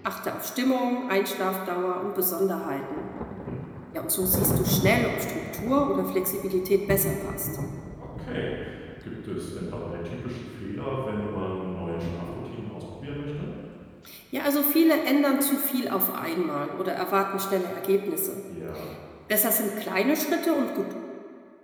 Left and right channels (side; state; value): both; identical; correlation 1.00